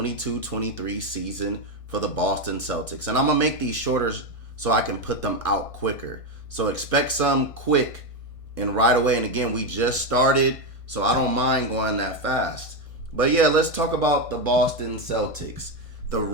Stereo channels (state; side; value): late; right; 1.6 ms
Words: season for the Boston Celtics. And I'm going to make these shorter so I can put them out quicker. So expect some quick and right away. And again, we just started, so I don't mind going that fast. But yeah, let's talk about the Boston Celtics, the